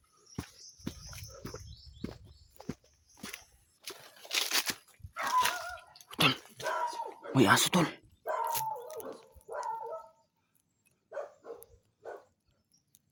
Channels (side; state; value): both; identical; correlation 1.00